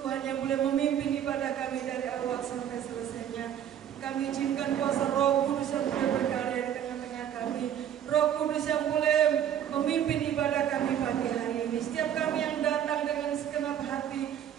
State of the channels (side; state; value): left; quieter; 9.9 dB